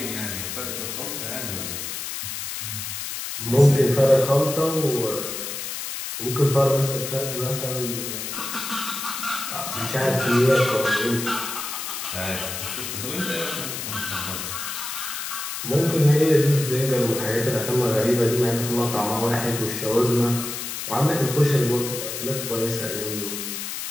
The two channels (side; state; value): left; noise; hiss, 6 dB below the sound